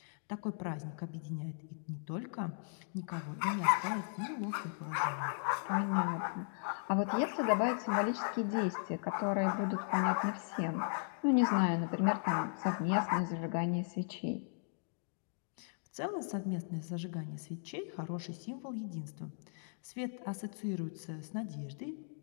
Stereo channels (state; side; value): silent; right; digital silence